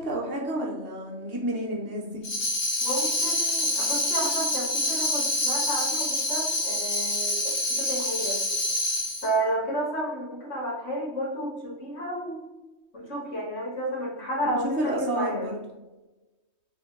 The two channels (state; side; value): late; right; 3.2 ms